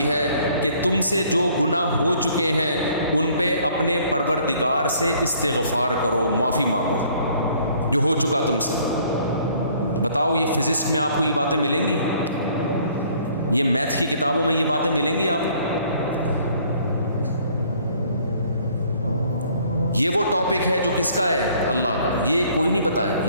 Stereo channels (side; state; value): both; inverted; correlation -0.59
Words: ہے کہ تم سے جو گناہ ہو چکے ہیں ان پہ اپنے پروردگار سے استغفار کرو، معافی مانگو جو ہو چکا تم سے. بتاؤ یہ فزکس میں آپ کو یہ باتیں ملیں گی؟ یہ میتھ کی کتابوں میں یہ باتیں ملیں گی آپ کو؟ یہ وہ ٹاپک ہے جو کس کا ہے؟ اللہ کا. یہ کوئی نہیں پتا